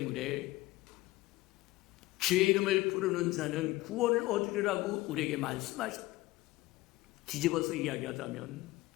주의 이름을 부르는 자는 구원을 얻으리라고 우리에게 말씀하셨다. 뒤집어서 이야기하자면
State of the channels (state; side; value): quieter; right; 19.0 dB